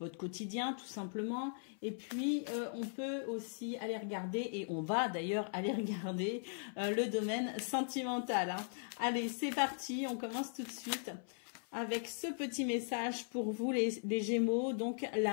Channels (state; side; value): silent; right; 52 dB below the other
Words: quotidien tout simplement, et puis on peut aussi aller regarder, et on va d'ailleurs aller regarder le domaine sentimental. Allez, c'est parti, on commence tout de suite avec ce petit message pour vous les Gémeaux, donc